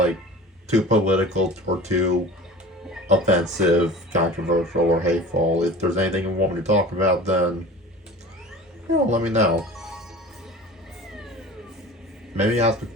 too political or too offensive, controversial, or hateful, if there's anything you want me to talk about, then let me know. Maybe ask a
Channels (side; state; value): both; normal; correlation 0.39